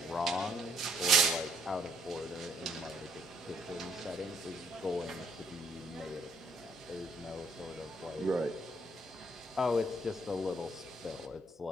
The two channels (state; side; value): normal; both; correlation 0.68